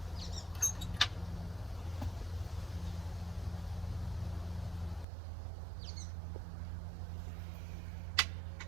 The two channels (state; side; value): drops out; left; at 5.1 s